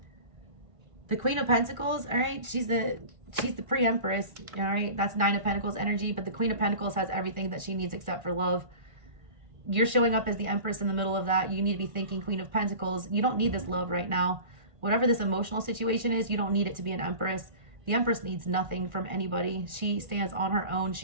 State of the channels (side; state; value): left; late; 1.5 ms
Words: The Queen of Pentacles, all right, she's the pre-empress, all right? That's Nine of Pentacles energy, but the Queen of Pentacles has everything that she needs except for love. You're showing up as the empress in the middle of that. You need to be thinking Queen of Pentacles. You don't need this love right now. Whatever this emotional situation is, you don't need it to be an empress. The empress needs nothing from anybody. She stands on her own.